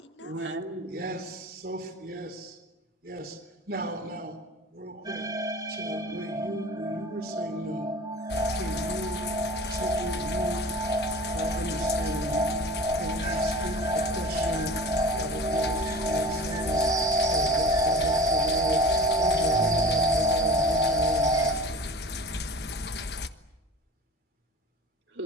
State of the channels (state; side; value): normal; both; correlation 0.38